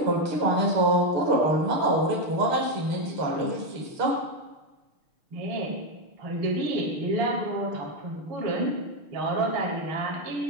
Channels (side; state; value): left; late; 6.5 ms